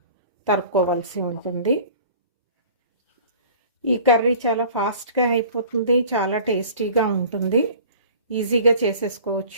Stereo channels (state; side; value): inverted; both; correlation -0.45